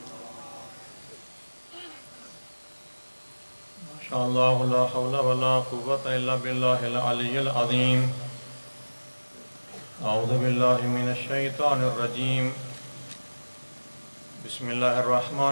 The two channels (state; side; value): inverted; both; correlation -1.00